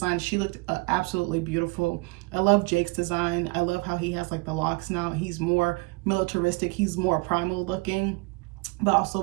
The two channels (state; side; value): quieter; left; 27.3 dB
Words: She looked absolutely beautiful. I love Jake's design. I love how he has like the locks now. He's more militaristic. He's more primal looking, but also